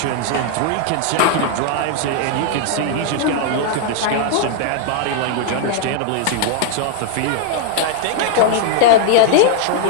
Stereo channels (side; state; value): both; different; correlation -0.01